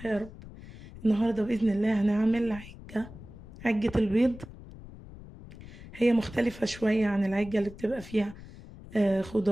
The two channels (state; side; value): noise; left; rumble, 16 dB below the sound